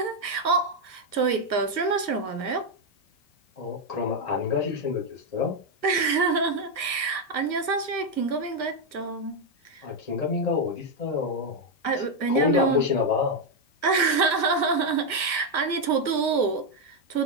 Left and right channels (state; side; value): late; right; 1.5 ms